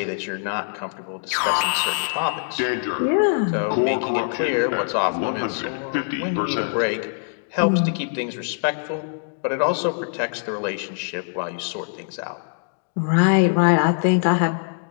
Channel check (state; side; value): silent; right; digital silence